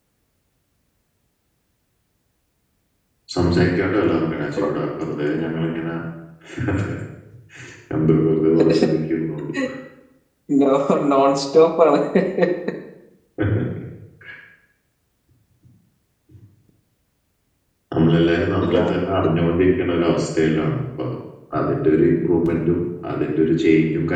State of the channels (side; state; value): both; identical; correlation 1.00